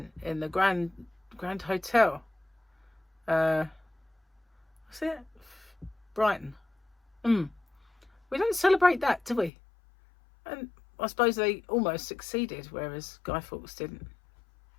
in the Grand Hotel. What's it? Brighton. We don't celebrate that, do we? And I suppose they almost succeeded, whereas Guy Fawkes didn't.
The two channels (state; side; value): drops out; right; at 9.5 s